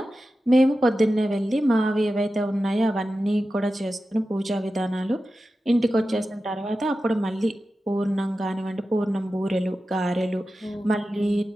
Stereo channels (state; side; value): normal; both; correlation 0.93